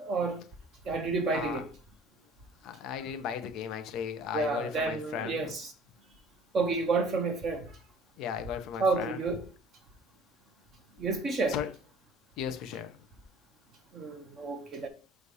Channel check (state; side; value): normal; both; correlation 0.50